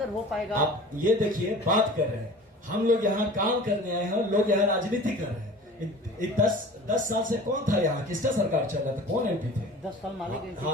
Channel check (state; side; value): normal; both; correlation 0.41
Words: हो पाएगा? आप ये देखिए, बात कर रहे हैं हम लोग यहाँ काम करने आए हैं, लोग यहाँ राजनीति कर रहे हैं। 10 साल से कौन था यहाँ, किसका सरकार चल रहा था, कौन एमपी थे? 10 साल माले के।